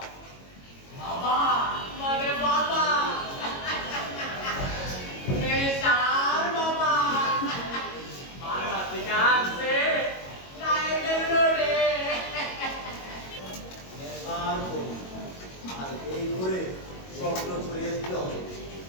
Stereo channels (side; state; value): right; late; 22 ms